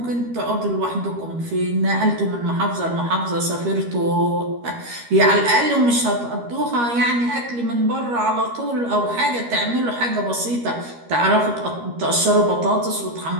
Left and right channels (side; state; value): left; late; 13 ms